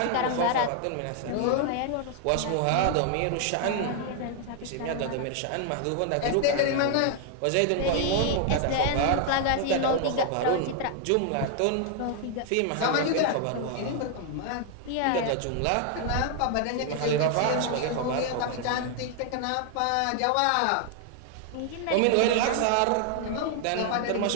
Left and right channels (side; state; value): both; different; correlation 0.00